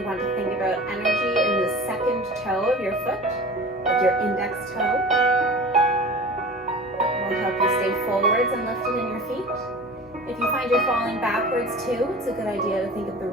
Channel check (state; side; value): normal; both; correlation 0.38